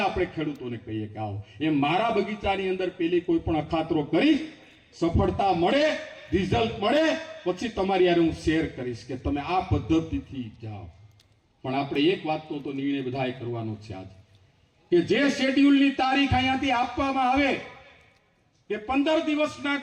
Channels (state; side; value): identical; both; correlation 1.00